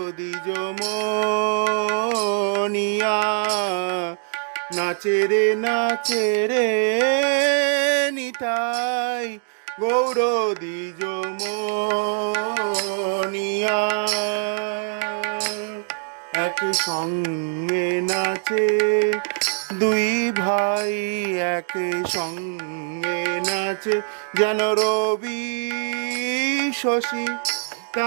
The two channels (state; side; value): silent; left; digital silence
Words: দ্বিজ মনিয়া। নাচে রে নিতাই গৌর দ্বিজ মনিয়া। এক সঙ্গে নাচে দুই ভাই, এক সঙ্গে নাচে যেন রবি শশী